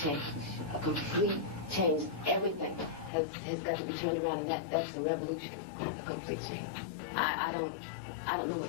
A complete change. Everything has got to be turned around, and that's the revolution. A complete change. I don't know what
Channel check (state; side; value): drops out; right; at 3.1 s